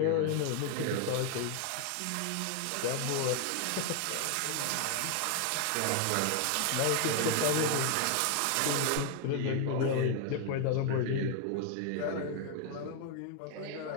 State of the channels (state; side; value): different; both; correlation 0.01